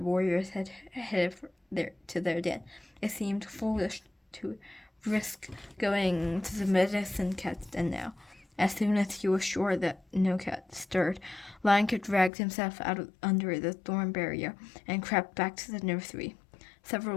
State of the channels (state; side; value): drops out; right; at 12.3 s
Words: had headed to their den. It seemed foolish to risk going to the medicine cat's den now. As soon as he was sure that no cat stirred, Lion Kit dragged himself out under the thorn barrier and crept back to the nursery.